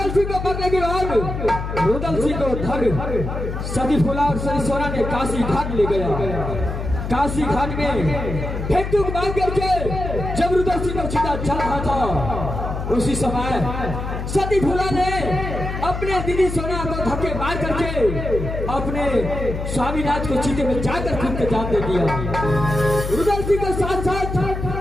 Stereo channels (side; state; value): left; noise; hum, 5 dB below the sound